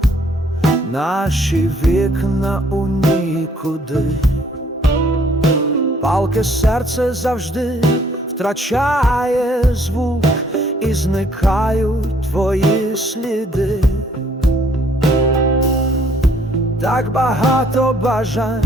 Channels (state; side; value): normal; both; correlation 0.63